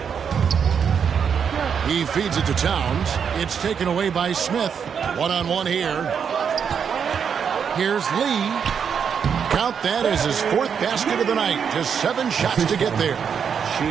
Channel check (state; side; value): quieter; left; 7.1 dB